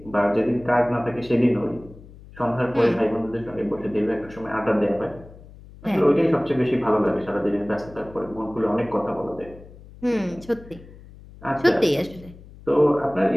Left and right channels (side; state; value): left; noise; hum, 20 dB below the sound